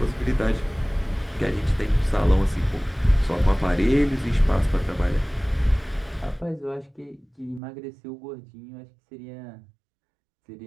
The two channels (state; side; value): drops out; left; at 7.6 s